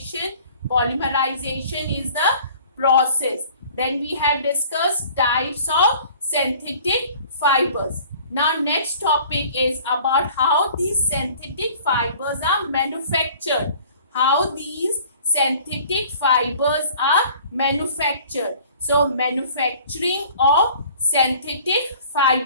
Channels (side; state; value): both; inverted; correlation -0.50